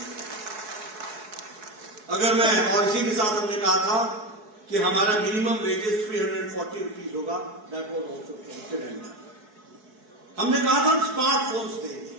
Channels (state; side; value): late; left; 4.7 ms